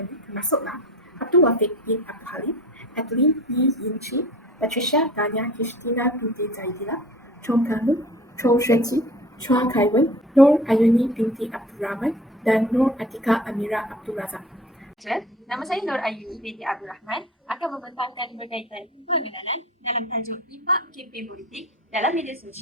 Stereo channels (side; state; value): both; normal; correlation 0.41